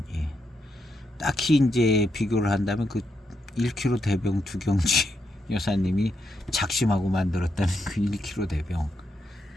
딱히 이제 비교를 한다면 그 1kg 대병 두경지 여사님이 작심하고 만들었다는 그 1kg 대병,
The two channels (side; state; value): both; normal; correlation 0.82